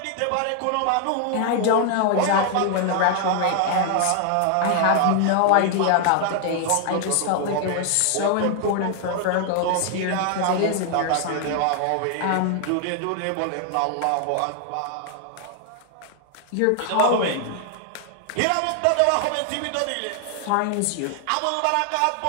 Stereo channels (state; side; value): different; both; correlation 0.00